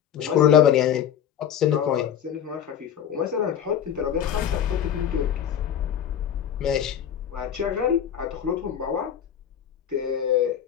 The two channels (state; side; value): quieter; right; 9.2 dB